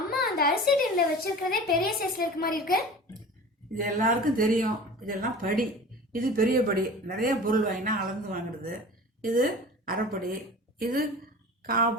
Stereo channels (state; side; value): normal; both; correlation 0.38